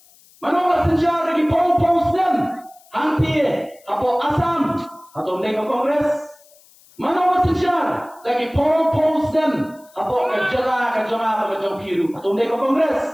mano pala senjar ya ki po snem hanti apo Assam atau mereka kongres mano pala senjar ya ki po snem apo ka jala ka jonga pa ka jopi atau mereka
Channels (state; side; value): noise; left; hiss, 28 dB below the sound